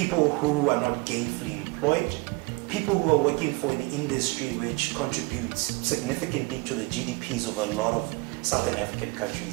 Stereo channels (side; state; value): left; quieter; 26.0 dB